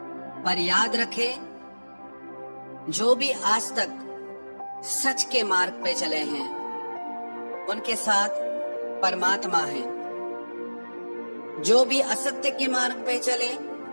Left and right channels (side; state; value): both; inverted; correlation -1.00